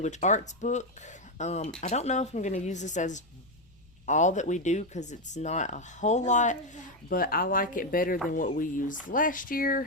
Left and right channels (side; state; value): left; noise; rumble, 28 dB below the sound